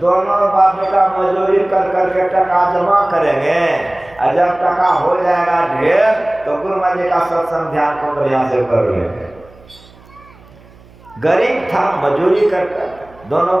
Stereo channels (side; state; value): right; noise; hum, 25 dB below the sound